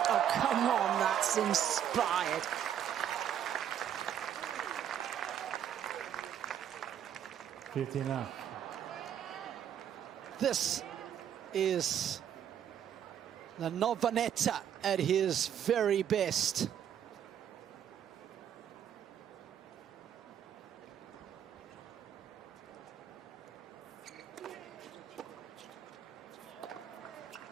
Oh, come on, that's inspired. This is the Navone at his very best.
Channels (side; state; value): left; quieter; 9.6 dB